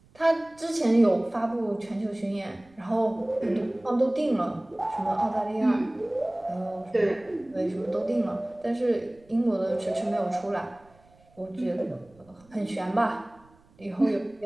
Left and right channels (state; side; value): noise; right; rumble, 29 dB below the sound